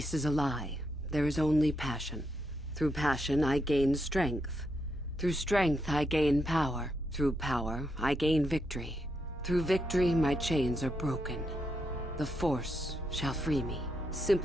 is a lie. There is only passion. Through passion, I gain strength. Through strength, I gain power. Through power, I gain victory. Through victory, my chains are broken. The Force shall free me.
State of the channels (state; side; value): normal; both; correlation 0.81